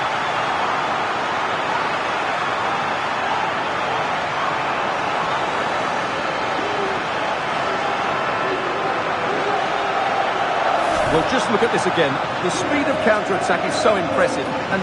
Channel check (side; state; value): both; identical; correlation 1.00